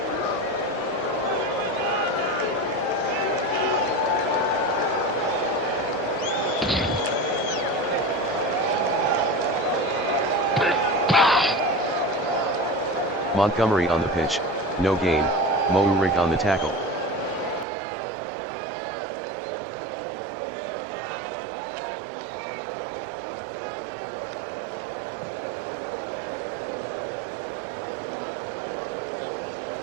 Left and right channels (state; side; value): drops out; left; at 17.7 s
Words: Montgomery on the pitch, no gain, Mouric on the tackle.